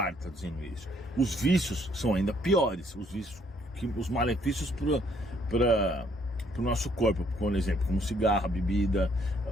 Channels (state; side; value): normal; both; correlation 0.67